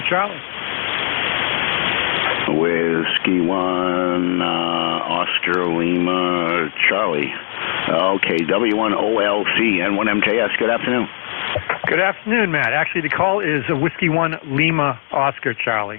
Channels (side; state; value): right; silent; 67 dB below the other